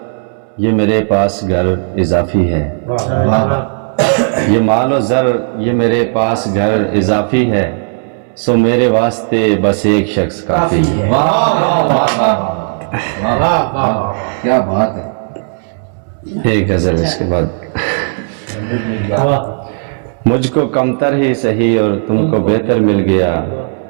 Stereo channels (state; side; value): silent; left; digital silence